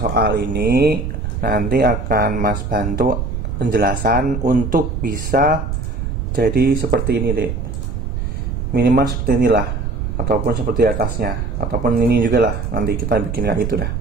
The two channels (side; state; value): right; noise; rumble, 3 dB below the sound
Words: ini nanti akan Mas bantu penjelasan untuk bisa jadi seperti ini dek, minimal seperti inilah, ataupun seperti atasnya, ataupun ini juga lah, nanti kita bikin kayak gitu dah.